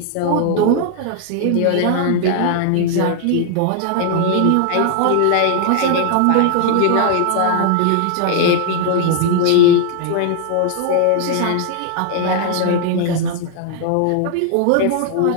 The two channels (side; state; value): both; different; correlation 0.00